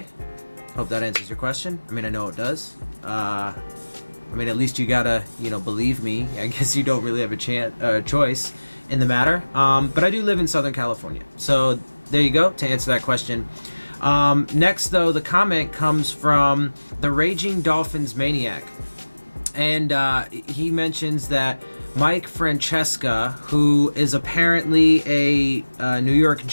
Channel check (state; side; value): inverted; both; correlation -1.00